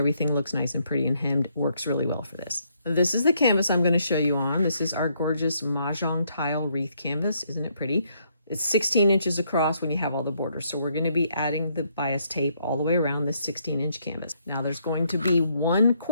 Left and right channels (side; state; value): both; inverted; correlation -0.72